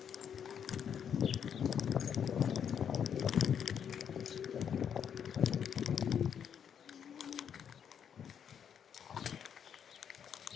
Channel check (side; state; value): right; quieter; 8.1 dB